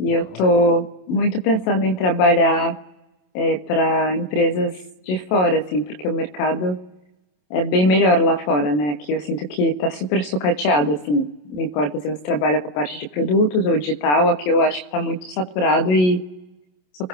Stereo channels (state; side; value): late; right; 27 ms